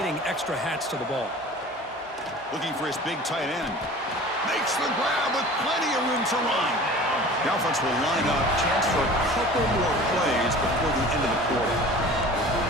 extra hats to the ball. Looking for his big tight end. Makes the grab with plenty of room to run. The offense will line up. Chance for a couple more plays before the end of the quarter.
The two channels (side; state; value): both; normal; correlation 0.42